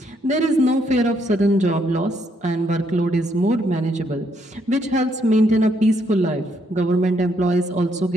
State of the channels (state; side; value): normal; both; correlation 0.73